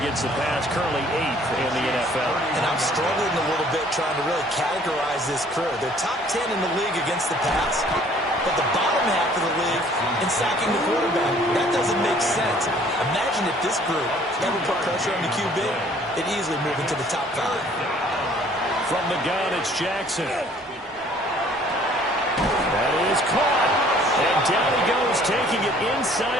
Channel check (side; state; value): both; normal; correlation 0.57